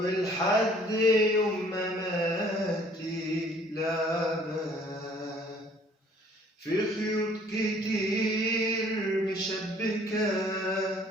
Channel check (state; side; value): normal; both; correlation 0.57